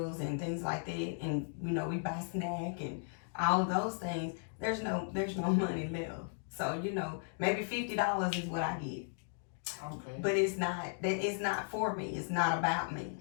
and things like that, and, you know, we buy snack and all of those things, there's no money left. So, you know, maybe $50 is what I get. Okay. But it's not for me. It's not about me.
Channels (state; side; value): silent; right; digital silence